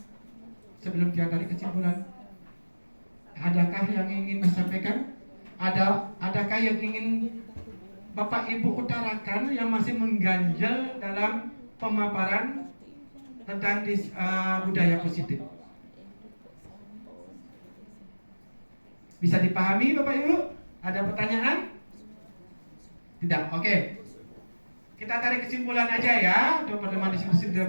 sebelum kita tarik kesimpulan. Adakah yang ingin disampaikan? Adakah yang ingin Bapak Ibu utarakan yang masih mengganjal dalam pemaparan tentang budaya positif? Bisa dipahami Bapak Ibu? Ada pertanyaan? Tidak, oke. Kita tarik kesimpulan aja ya untuk pertemuan diskusi budaya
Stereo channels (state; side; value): inverted; both; correlation -1.00